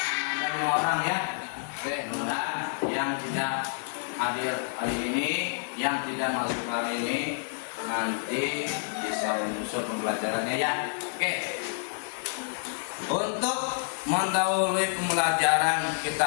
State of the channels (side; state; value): right; silent; digital silence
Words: Ada orang ya. Oke, mudah-mudahan yang tidak hadir hari ini, yang tidak masuk kali ini, nanti bisa menyusul pembelajarannya ya. Oke. Untuk mendahului pembelajaran kita